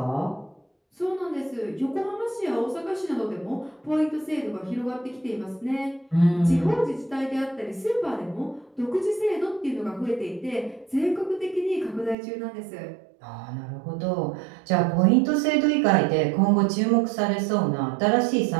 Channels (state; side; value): drops out; left; at 12.2 s